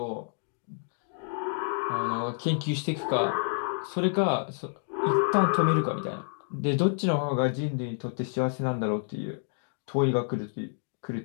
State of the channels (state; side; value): silent; right; digital silence